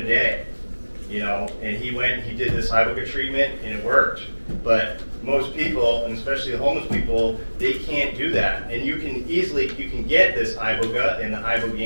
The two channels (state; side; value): inverted; both; correlation -1.00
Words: day, and he went and he did this iboga treatment, and it worked. But most people, and especially the homeless people, they can't do that. And you can get this iboga and the